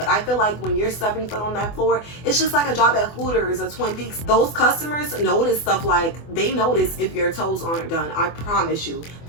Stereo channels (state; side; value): late; right; 24 ms